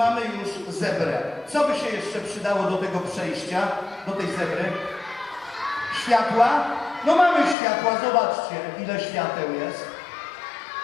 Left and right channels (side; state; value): right; drops out; at 7.6 s